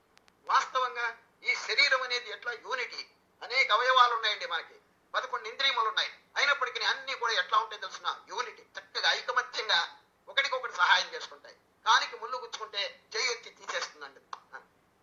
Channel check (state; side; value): identical; both; correlation 1.00